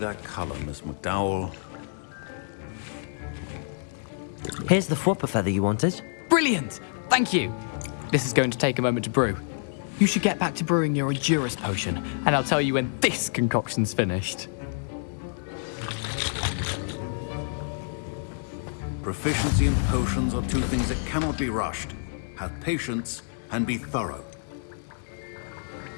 color, Miss McDowell. Here's the Fwooper feather you wanted. Brilliant! Thank you! This is going to take a moment to brew. You should get back to brewing your Endurance potion, and I'll tell you when this concoction's finished. Proficiency and potions are two things that cannot be rushed. Have patience and be thorough.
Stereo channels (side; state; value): right; silent; digital silence